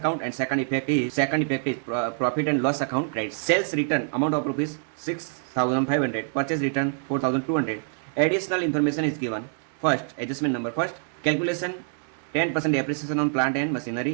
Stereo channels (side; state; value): left; silent; digital silence